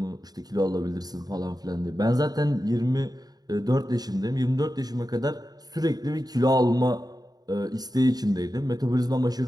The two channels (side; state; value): left; late; 0.19 ms